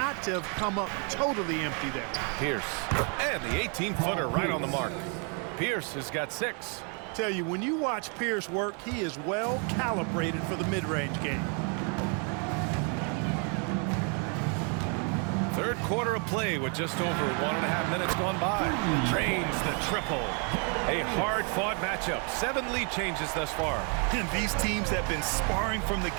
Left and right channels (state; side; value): quieter; left; 37.7 dB